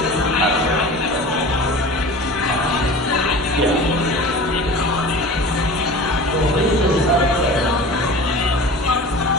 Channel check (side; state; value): both; normal; correlation 0.37